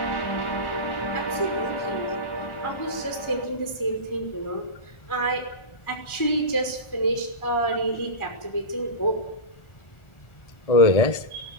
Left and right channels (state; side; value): late; right; 1.4 ms